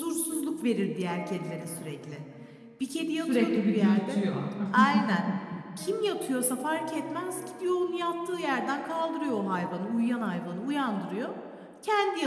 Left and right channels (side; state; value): both; identical; correlation 1.00